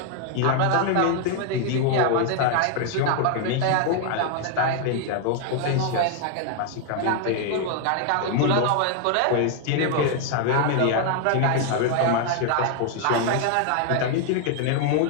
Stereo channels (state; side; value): different; both; correlation 0.00